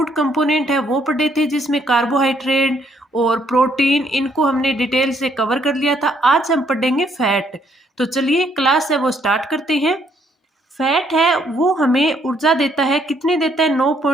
कंपोनेंट है वो पढ़े थे, जिसमें कार्बोहाइड्रेट और प्रोटीन इनको हमने डिटेल से कवर कर लिया था। आज हम पढ़ेंगे फैट। तो चलिए क्लास है वो स्टार्ट करते हैं। फैट है वो हमें ऊर्जा देता है, कितनी देता है?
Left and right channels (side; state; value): both; normal; correlation 0.69